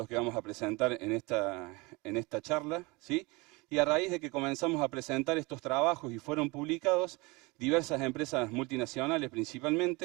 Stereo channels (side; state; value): left; quieter; 25.4 dB